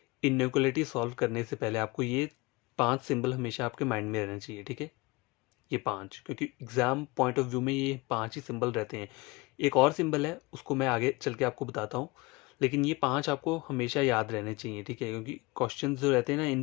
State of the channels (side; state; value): right; quieter; 23.7 dB